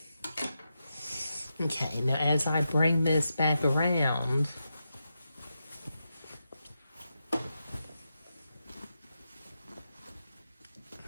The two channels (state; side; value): inverted; both; correlation -0.87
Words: Okay, now as I bring this back around,